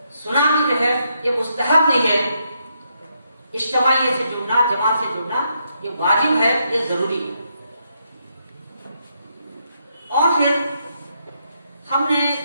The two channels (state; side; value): inverted; both; correlation -0.78